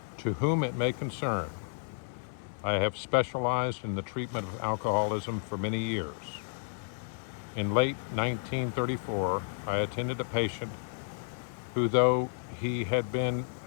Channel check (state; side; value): silent; right; 57 dB below the other